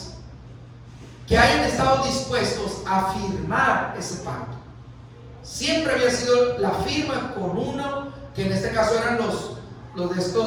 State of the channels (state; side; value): identical; both; correlation 1.00